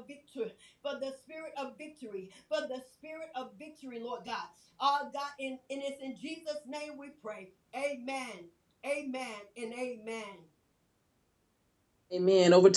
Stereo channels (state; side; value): identical; both; correlation 1.00